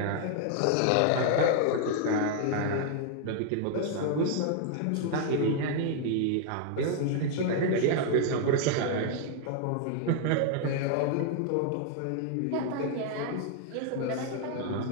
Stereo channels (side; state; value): both; different; correlation 0.00